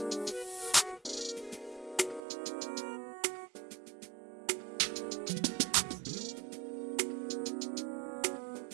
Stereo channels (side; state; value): left; drops out; at 2.2 s